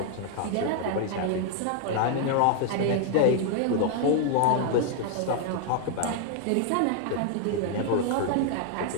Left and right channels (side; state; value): both; different; correlation 0.00